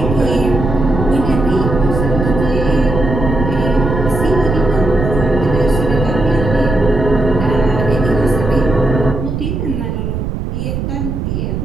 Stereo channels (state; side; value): noise; right; rumble, 3 dB below the sound